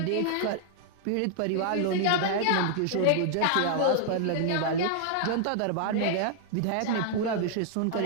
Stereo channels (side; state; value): both; different; correlation -0.01